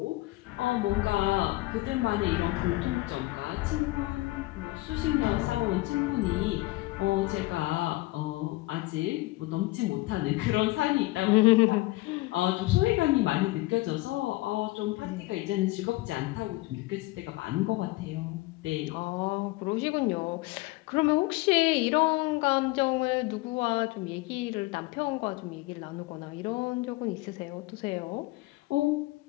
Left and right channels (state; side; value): quieter; right; 20.7 dB